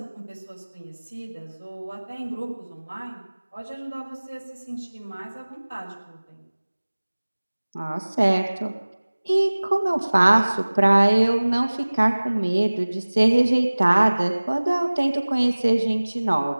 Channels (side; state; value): both; inverted; correlation -1.00